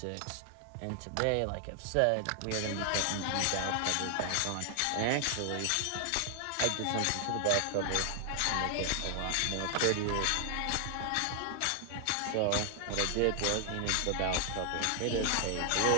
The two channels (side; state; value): both; different; correlation 0.00